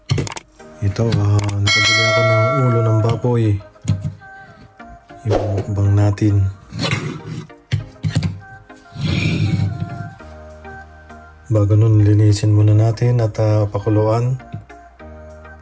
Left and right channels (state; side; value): identical; both; correlation 1.00